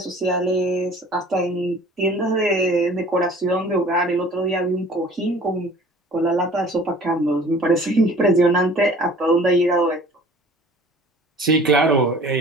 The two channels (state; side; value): normal; both; correlation 0.48